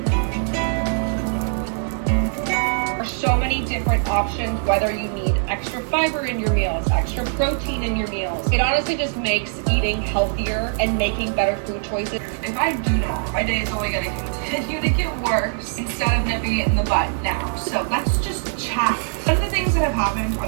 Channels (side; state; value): left; silent; 64 dB below the other